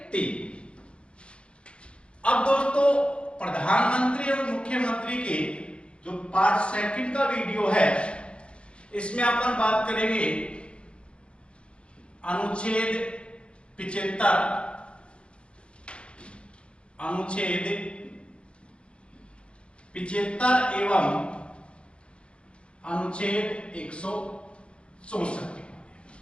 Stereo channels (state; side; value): late; right; 0.058 ms